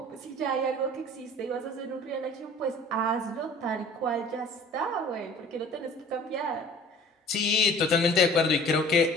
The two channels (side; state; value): both; normal; correlation 0.47